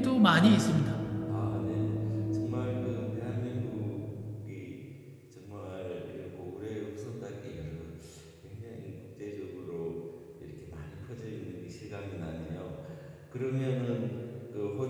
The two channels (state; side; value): identical; both; correlation 1.00